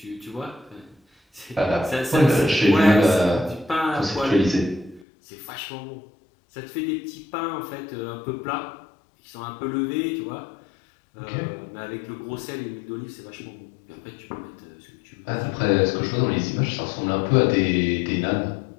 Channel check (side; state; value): right; drops out; at 5.1 s